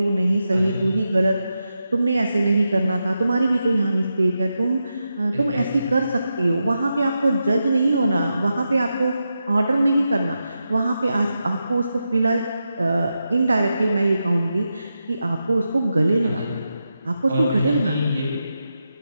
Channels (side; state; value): both; inverted; correlation -0.88